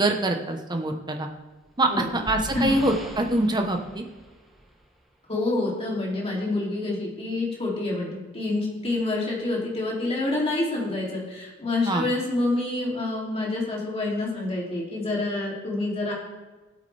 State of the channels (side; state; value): both; normal; correlation 0.61